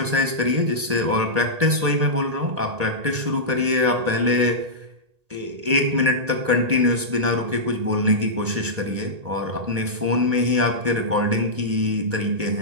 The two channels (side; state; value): left; late; 1.8 ms